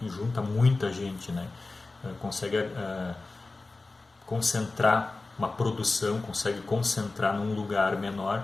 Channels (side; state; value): right; quieter; 3.4 dB